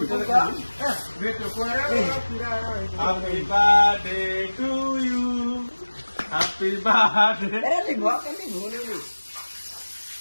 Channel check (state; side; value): inverted; both; correlation -1.00